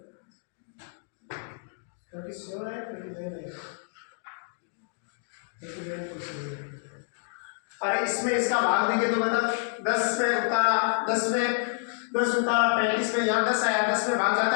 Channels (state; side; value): silent; right; digital silence